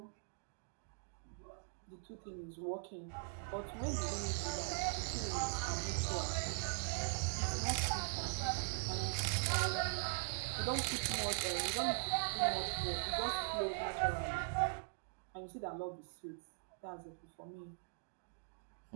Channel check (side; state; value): left; silent; digital silence